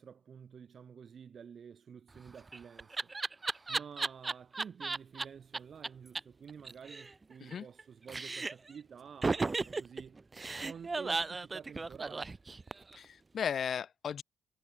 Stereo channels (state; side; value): normal; both; correlation 0.90